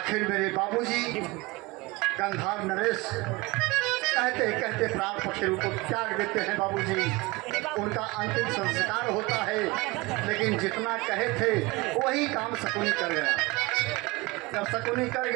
मेरे बाबूजी गंधार नरेश कहते कहते प्राण पक्षी को त्याग देते हैं। बाबूजी उनका अंतिम संस्कार होता है लेकिन जितना कहे थे वही काम शकुनी कर गया। जब शकुनी कर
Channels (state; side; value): quieter; left; 22.9 dB